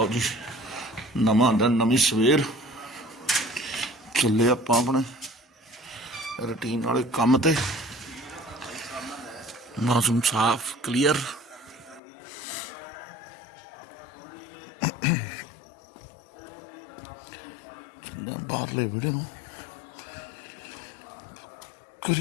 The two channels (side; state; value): right; drops out; at 12.0 s